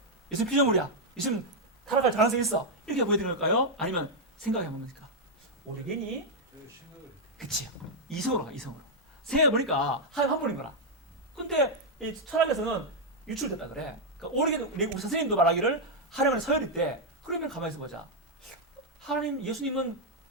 예수님 피조물이야. 예수님 타락할 가능성이 있어. 이렇게 보여드린 걸까요? 아니면 생각해 봅니까? 오르게니? 그치. 이성으로 가, 이성으로. 생각해 보니까 한 번인 거라. 근데 이 철학에서는 유출됐다 그래. 그러니까 오르게니, 우리 선생님도 말하기를 하나님은 서열일 때, 그러면 가만히 있어 보자. 하나님, 예수님은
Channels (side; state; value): both; normal; correlation -0.02